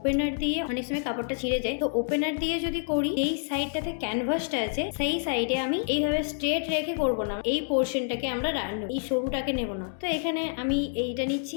দিয়ে অনেক সময় কাপড়টা ছিঁড়ে যায়। তো ওপেনার দিয়ে যদি করি এই সাইডটাতে ক্যানভাসটা আছে সেই সাইডে আমি এইভাবে স্ট্রেট রেখে করব না, এই পোর্শনটাকে আমরা এই সরুটাকে নেব না। তো এখানে আমি এইটা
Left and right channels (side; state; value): right; silent; 59 dB below the other